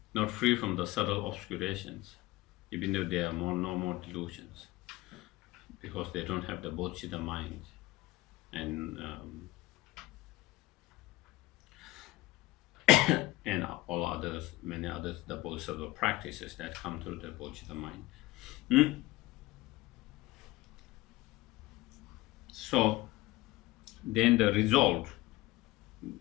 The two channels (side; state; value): right; quieter; 18.9 dB